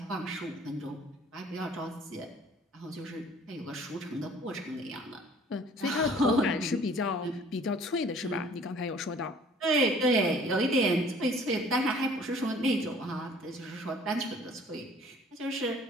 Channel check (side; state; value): both; normal; correlation 0.53